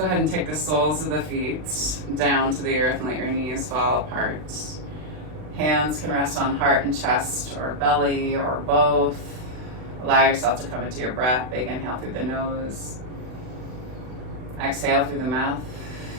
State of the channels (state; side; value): late; left; 39 ms